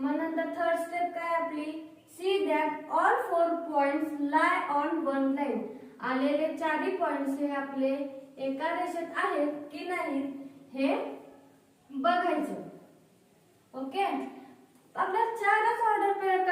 नंतर थर्ड स्टेप काय आपली, see that all 4 points lie on one line. आलेले 4 पॉइंट्स हे आपले एका रेषेत आहेत की नाही हे बघायचं. ओके, आपल्याला 4च ऑर्डर पेअर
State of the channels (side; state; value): both; identical; correlation 1.00